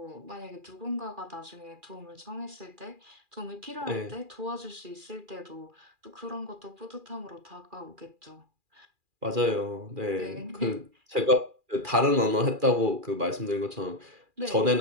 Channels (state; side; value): late; left; 2.4 ms